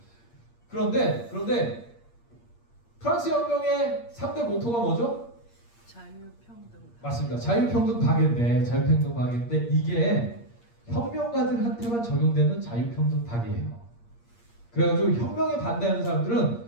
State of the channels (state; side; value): late; right; 8.6 ms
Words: 그런데 프랑스 혁명의 3대 모토가 뭐죠? 자유평등. 맞습니다. 자유평등 파괴인데 이게 혁명가들한테만 적용되는 자유평등 파괴예요. 그래가지고 혁명에 반대하는